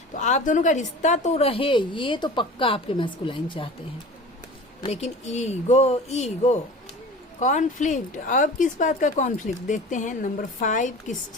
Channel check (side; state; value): both; normal; correlation 0.38